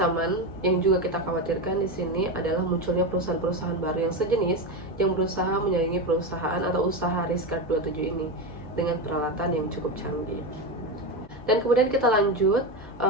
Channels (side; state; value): both; normal; correlation 0.16